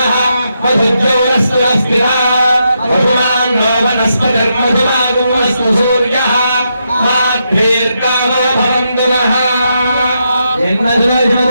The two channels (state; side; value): inverted; both; correlation -0.82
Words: मधुज्योरस्तुरस्तिरा मधुमान् नो वनस्पतिर्मधुमागुमस्तु सूर्यः माभ्येर्गावो भवन्तु नः